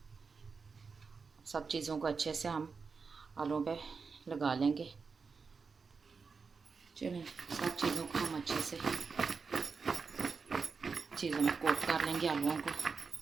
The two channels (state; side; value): quieter; left; 5.0 dB